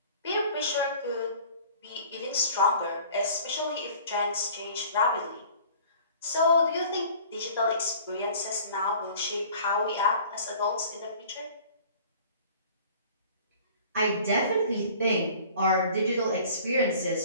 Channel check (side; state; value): both; inverted; correlation -0.48